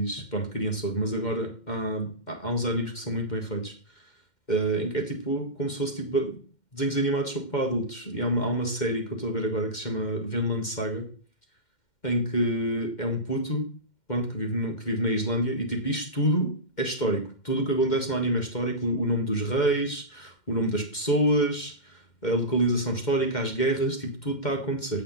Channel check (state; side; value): late; right; 2.1 ms